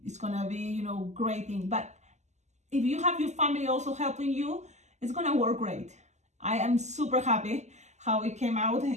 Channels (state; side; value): late; left; 0.33 ms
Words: it's gonna be, you know, great thing. But if you have your family also helping you, it's gonna work great. I am super happy how it came out